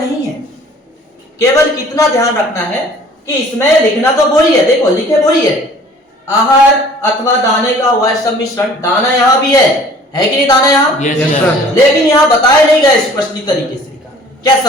है। केवल कितना ध्यान रखना है कि इसमें लिखना तो वही है, देखो लिखे वही है, आहार अथवा दाने का वह सम्मिश्रण। दाना यहाँ भी है कि नहीं दाना यहाँ? लेकिन यहाँ बताया नहीं गया स्पष्ट तरीके से। क्या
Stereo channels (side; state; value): both; normal; correlation 0.51